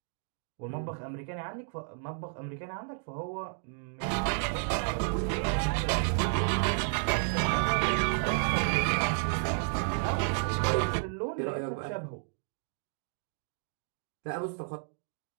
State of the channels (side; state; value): left; silent; digital silence